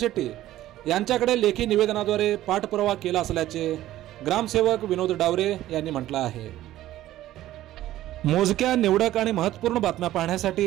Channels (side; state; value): left; quieter; 14.3 dB